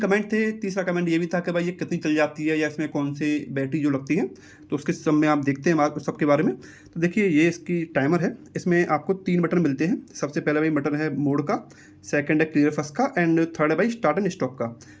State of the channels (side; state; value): both; identical; correlation 1.00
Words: थे। तीसरा कमेंट ये भी था कि भाई ये कितनी चल जाती है या इसमें कौन सी बैटरी जो लगती है। तो उसके सब में आप देखते हैं सबके बारे में। तो देखिए, ये इसकी टाइमर है। इसमें आपको 3 बटन मिलते हैं। सबसे पहला भाई बटन है मोड का, सेकंड है क्लियर फर्स्ट का, एंड थर्ड है भाई स्टार्ट एंड स्टॉप का।